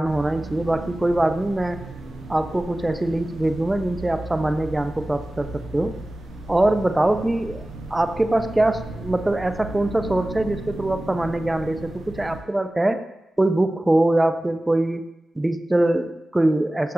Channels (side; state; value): both; normal; correlation 0.96